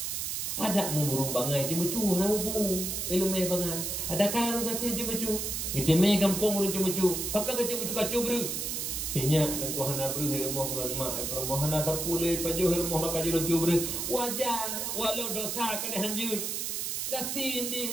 Ada murung bangai ti mecu na ubu. Ilang may bangai. Ada kala nasi ti mecu. Iti may kampung rin ti mecu. Pakka ka ti mecu kacu bro. Sinya ada kuhana bro hirmoh ngan mak. Permohana tapulay pajo hirmoh makaji lucu bro. Wajar walau dosa ka dihanjur. Gasin di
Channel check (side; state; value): right; noise; hiss, 2 dB below the sound